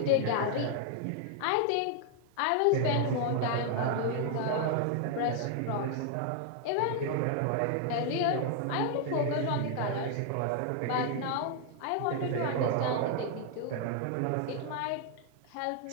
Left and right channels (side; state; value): both; different; correlation 0.00